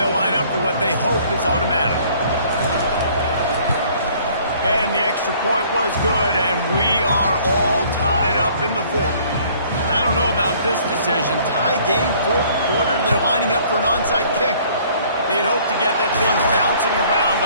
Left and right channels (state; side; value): inverted; both; correlation -0.57